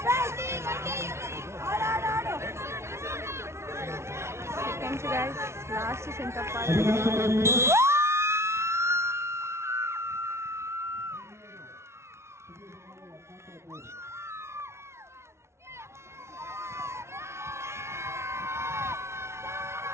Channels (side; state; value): left; late; 0.13 ms